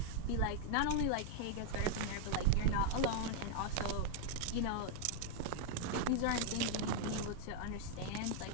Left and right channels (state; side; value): different; both; correlation 0.00